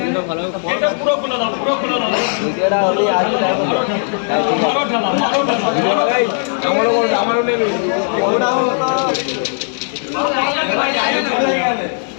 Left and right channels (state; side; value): silent; right; digital silence